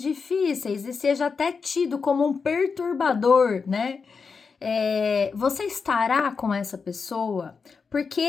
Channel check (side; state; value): right; quieter; 5.2 dB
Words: e seja até tido como um perturbador, né? Você estará com essa pessoa?